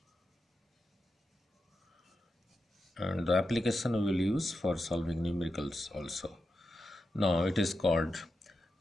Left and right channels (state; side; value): normal; both; correlation 0.89